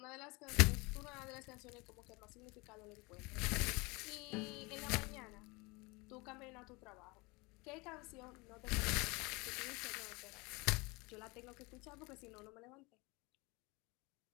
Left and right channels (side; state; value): right; quieter; 26.0 dB